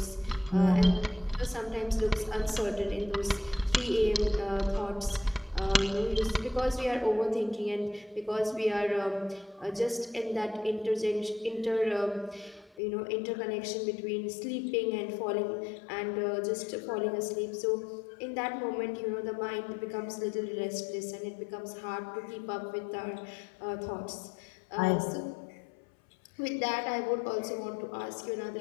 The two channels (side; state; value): right; drops out; at 12.8 s